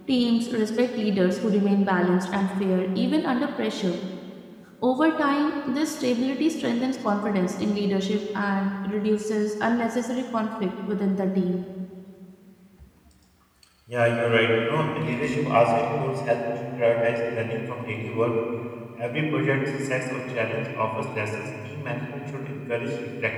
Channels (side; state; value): both; identical; correlation 1.00